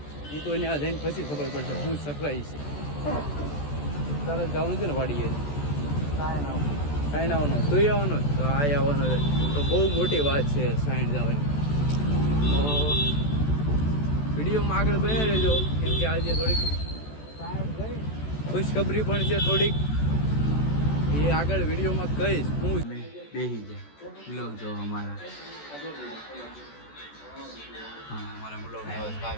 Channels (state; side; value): late; right; 14 ms